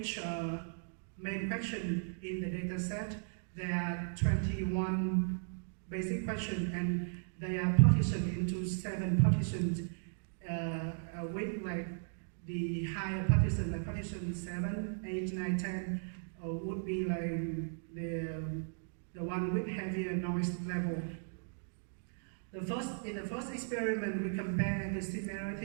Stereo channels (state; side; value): silent; left; digital silence